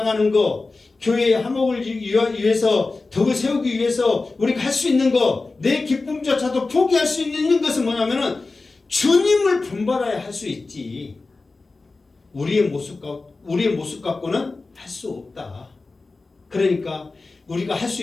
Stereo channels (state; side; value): quieter; right; 3.6 dB